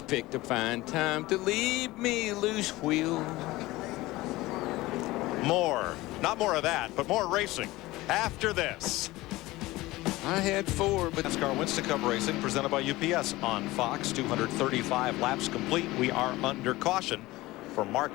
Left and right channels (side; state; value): right; quieter; 19.0 dB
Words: picked a fine time to leave me loose wheel. More. Not more of that, but more racing after this. I had 4, but NASCAR Winston Cup Racing presented by UPS on Fox. 235 laps complete. We are under caution for